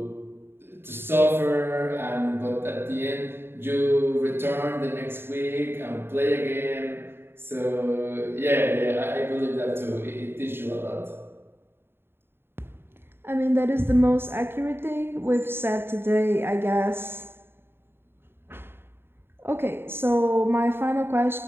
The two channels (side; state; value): left; late; 0.11 ms